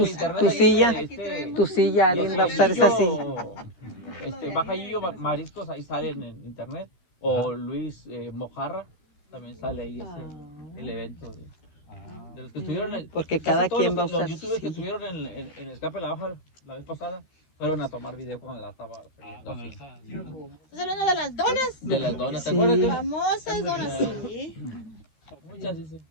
Tu silla, alguien va a usar esa silla. Baja Gillo Mariscos, ahí sale en internet, o Luis Mojarra, también sale ahí el evento de los que estuvieron, porque cada quien va a usar los youtubers que estuvieron en el escape de la baja la vez pasada fueron a tomar video cuando la estaba ¿Estás hablando de las donas? de las donas, ¿te acuerdas? Famosas donas, sí. Muchas dicen.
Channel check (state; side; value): late; right; 13 ms